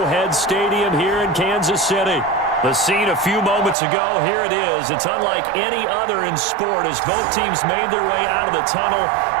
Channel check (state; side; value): drops out; left; at 3.8 s